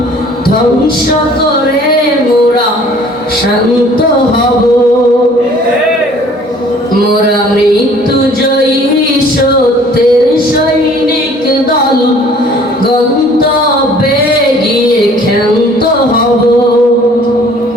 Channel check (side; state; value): both; normal; correlation 0.54